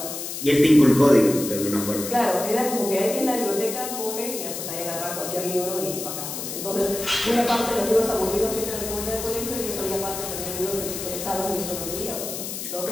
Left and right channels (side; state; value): left; noise; hiss, 7 dB below the sound